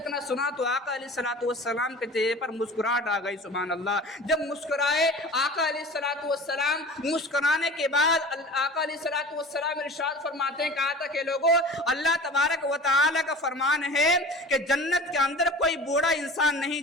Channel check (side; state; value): both; normal; correlation 0.40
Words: اتنا سنا تو آقا علیہ الصلوۃ والسلام کے چہرے پر مسکراہٹ آ گئی، سبحان اللہ۔ جب مسکرائے آقا علیہ الصلوۃ والسلام، مسکرانے کے بعد آقا علیہ الصلوۃ والسلام ارشاد فرماتے ہیں، کہا تھا کہ لوگوں اللہ تبارک و تعالی کا فرمان ہے کہ جنت کے اندر کوئی بوڑھا انسان نہیں